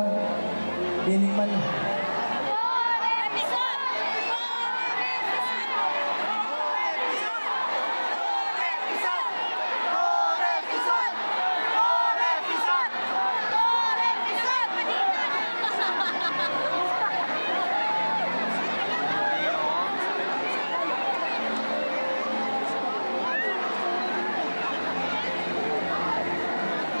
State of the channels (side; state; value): both; inverted; correlation -1.00